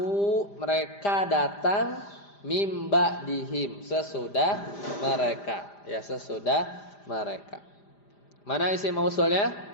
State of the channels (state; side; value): late; right; 5.0 ms